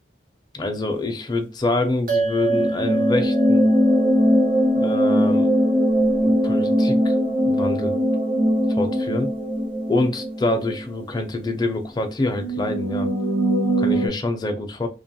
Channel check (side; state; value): both; normal; correlation 0.81